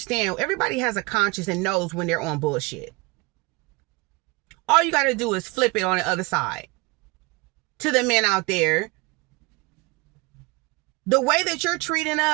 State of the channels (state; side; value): quieter; left; 25.2 dB